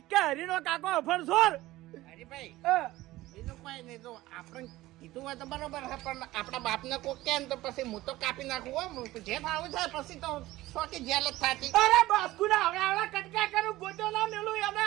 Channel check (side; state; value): left; quieter; 17.3 dB